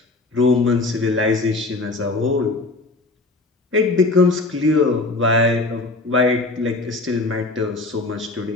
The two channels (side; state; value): right; quieter; 3.3 dB